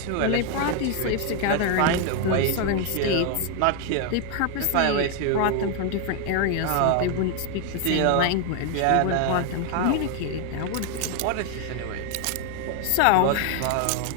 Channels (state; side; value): different; both; correlation 0.00